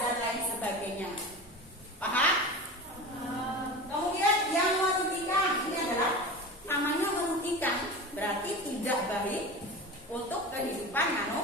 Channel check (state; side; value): normal; both; correlation 0.31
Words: lain sebagainya. Paham? Kemudian yang merugikan ini adalah namanya merugikan, berarti tidak baik untuk kehidupan